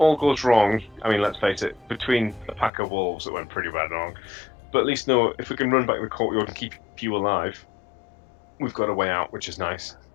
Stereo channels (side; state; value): right; drops out; at 2.7 s